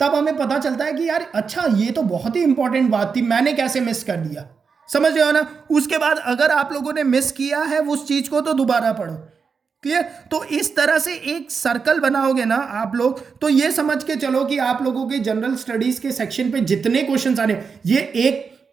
हमें पता चलता है कि यार अच्छा, ये तो बहुत ही इंपॉर्टेंट बात थी, मैंने कैसे मिस कर दिया। समझ रहे हो ना? उसके बाद अगर आप लोगों ने मिस किया है उस चीज को तो दोबारा पढ़ो। क्लियर? तो इस तरह से एक सर्कल बनाओगे ना आप लोग, तो ये समझ के चलो कि आप लोगों के जनरल स्टडीज के सेक्शन पे जितने क्वेश्चंस आ रहे हैं,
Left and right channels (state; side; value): quieter; left; 5.5 dB